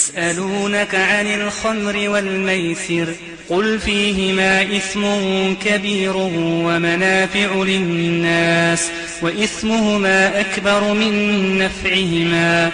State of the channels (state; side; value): identical; both; correlation 1.00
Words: عن الخمر والميسر قل فيهما إثم كبير ومنافع للناس وإثمهما أكبر من نفعهما